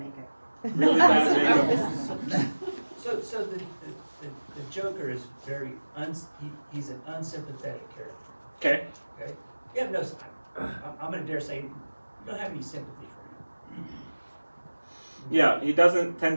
Really bad makeup. So the Joker is very, he's an unsympathetic character. Okay. Okay? Yeah, no, I'm going to dare say you don't have any sympathy for him. Yeah, he doesn't tend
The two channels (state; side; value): inverted; both; correlation -1.00